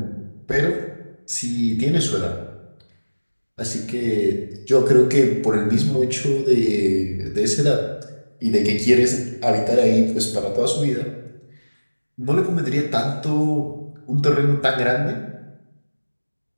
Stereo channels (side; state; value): both; inverted; correlation -1.00